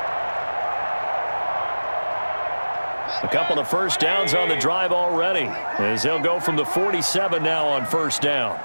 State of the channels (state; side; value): inverted; both; correlation -1.00